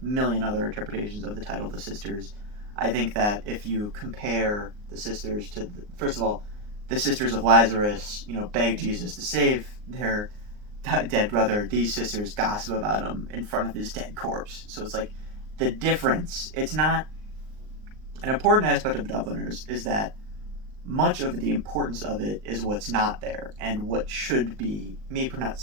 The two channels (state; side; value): late; left; 38 ms